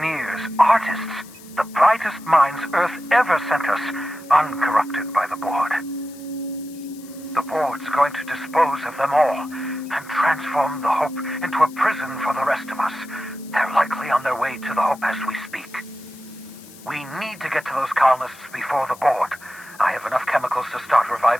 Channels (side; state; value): left; noise; hiss, 21 dB below the sound